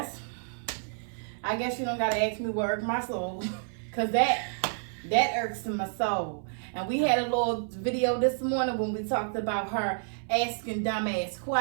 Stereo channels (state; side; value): silent; left; 58 dB below the other